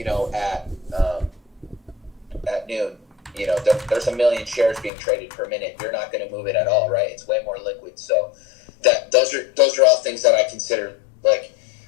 at noon, there's a million shares being traded per minute. You're not going to move it at all, right? It's way more liquid. So those are all things that I consider. Like,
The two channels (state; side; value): drops out; right; at 4.9 s